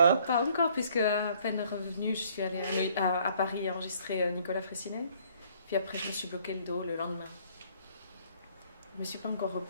Pas encore, puisque à peine revenue, je suis allée à Paris enregistrer Nicolas Fressinet. Puis après, je me suis bloqué le dos le lendemain. Je ne me suis pas encore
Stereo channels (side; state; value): both; inverted; correlation -0.61